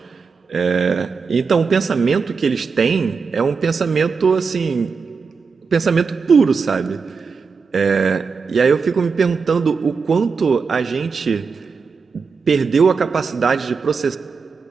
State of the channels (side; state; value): left; quieter; 5.2 dB